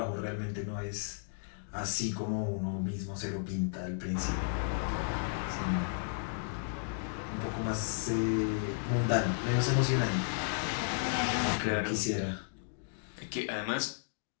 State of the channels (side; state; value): right; silent; digital silence